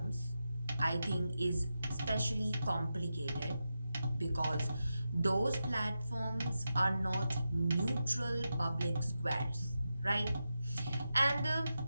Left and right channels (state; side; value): inverted; both; correlation -0.89